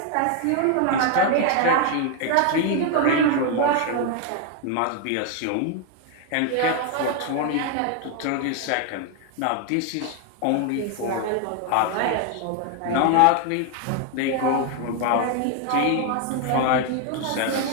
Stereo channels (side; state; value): both; different; correlation 0.01